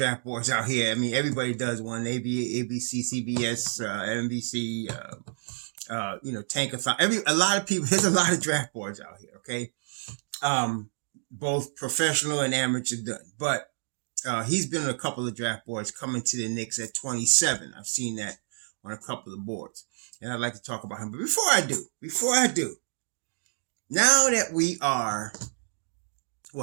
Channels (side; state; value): left; silent; digital silence